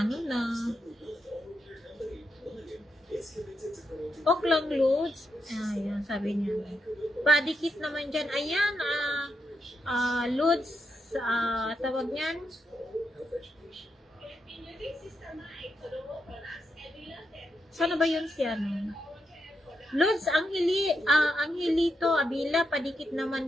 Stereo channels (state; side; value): normal; both; correlation 0.83